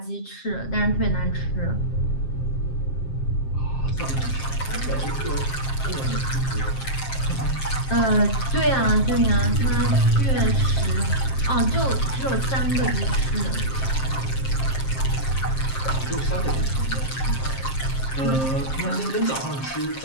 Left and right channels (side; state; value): right; late; 7.5 ms